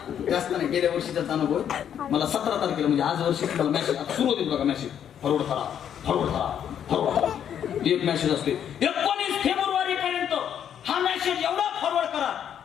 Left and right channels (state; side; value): quieter; right; 9.2 dB